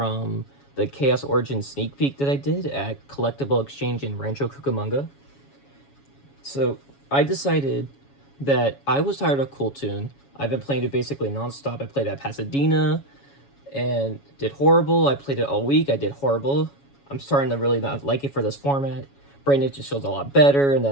the Chaos Origin sneak peek that I did at Collectible Exchange in Rancho Cucamonga. So, I decided that I was tired of Cool Tune. I've been playing it basically nonstop. I played at Pasadena and did horrible. I played it all week. I did horrible. I'm starting to really not like it for this format. Branded just feels a lot better, and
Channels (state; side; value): late; right; 7.2 ms